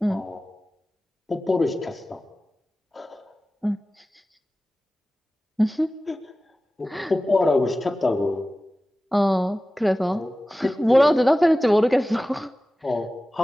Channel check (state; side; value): normal; both; correlation 0.96